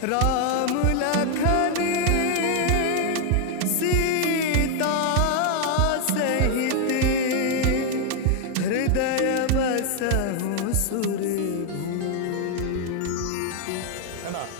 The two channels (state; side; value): different; both; correlation 0.00